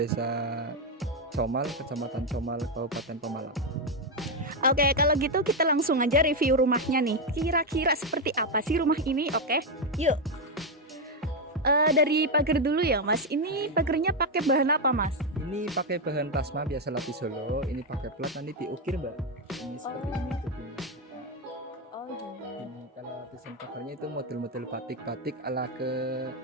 Comal, Kecamatan Comal, Kabupaten Pemalang. Oke, kalau gitu kita langsung aja review rumahnya nih. Kira-kira seperti apa sih rumah ini? Oke, yuk. Dari pagar dulu ya, Mas. Ini pagarnya pakai bahan apa, Mas? Ini pakai bahan plasma biasa lapis Solo. Ini pakai plat, nanti diukir, Mbak. Ini seperti ini tutupnya. Oh, gini. Ini kalau lapisan pagarnya itu model-model batik-batik ala ke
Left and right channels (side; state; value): both; normal; correlation 0.05